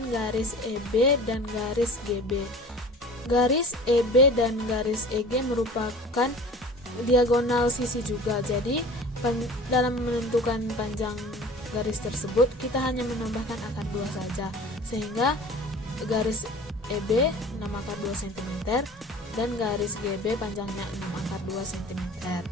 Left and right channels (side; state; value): both; normal; correlation 0.42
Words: garis EB dan garis GB. Garis EB dan garis EG merupakan diagonal sisi juga. Jadi dalam menentukan panjang garis tersebut kita hanya menambahkan akar 2 saja, sehingga garis EB 6 akar 2 cm dan garis GB panjangnya 6 akar 2 cm.